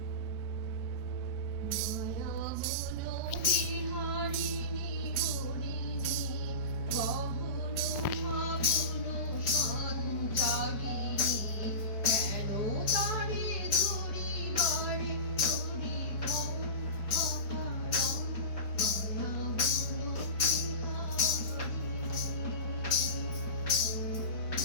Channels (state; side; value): late; right; 5.0 ms